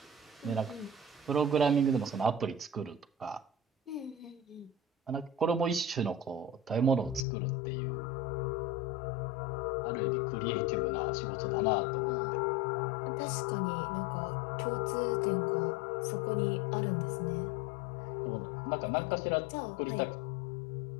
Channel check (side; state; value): right; drops out; at 7.2 s